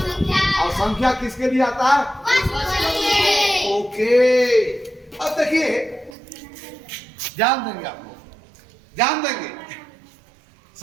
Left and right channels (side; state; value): left; drops out; at 6.2 s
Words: और संख्या किसके लिए आता है? ओके, अब देखिए, ध्यान देंगे आप लोग, ध्यान देंगे।